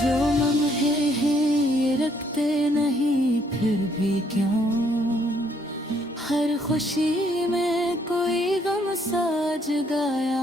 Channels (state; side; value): normal; both; correlation 0.68